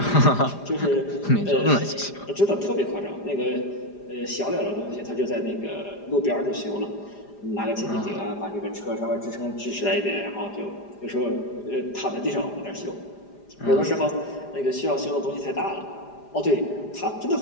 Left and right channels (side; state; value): right; late; 4.9 ms